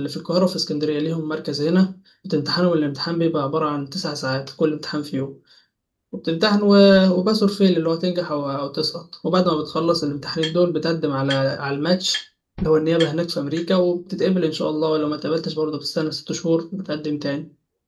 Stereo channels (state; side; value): identical; both; correlation 1.00